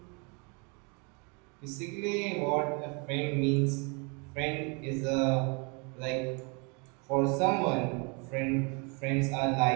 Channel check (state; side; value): quieter; left; 32.8 dB